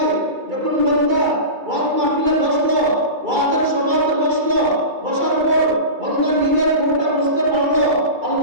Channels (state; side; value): late; left; 2.3 ms